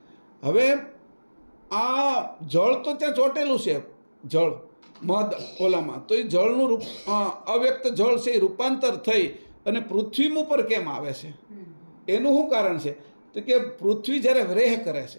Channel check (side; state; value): both; inverted; correlation -1.00